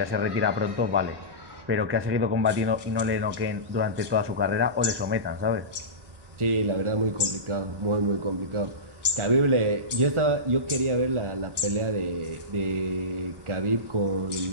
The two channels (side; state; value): left; late; 1.2 ms